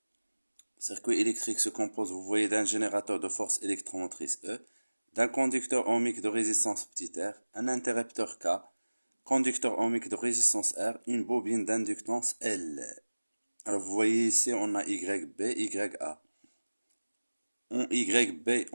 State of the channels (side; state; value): both; inverted; correlation -1.00